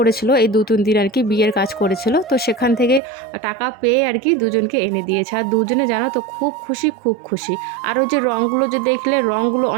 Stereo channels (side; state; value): left; drops out; at 3.0 s